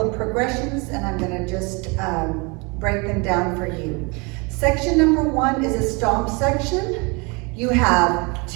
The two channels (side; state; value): left; quieter; 29.6 dB